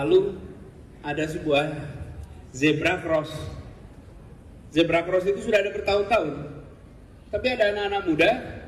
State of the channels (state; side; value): identical; both; correlation 1.00